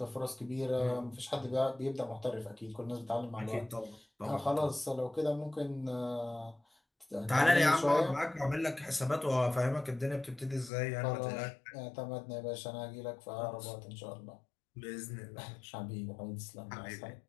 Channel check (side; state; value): right; drops out; at 10.7 s